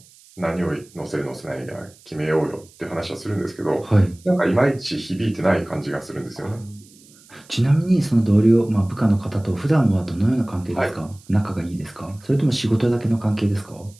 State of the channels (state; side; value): noise; right; hiss, 26 dB below the sound